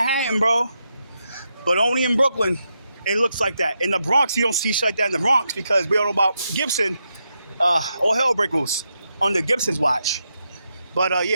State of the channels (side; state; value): both; inverted; correlation -0.84